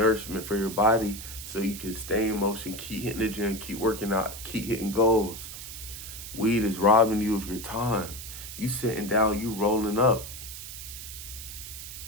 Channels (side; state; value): right; noise; hiss, 10 dB below the sound